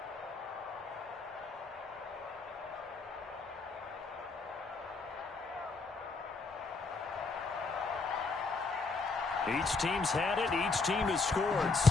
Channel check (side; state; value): right; quieter; 4.1 dB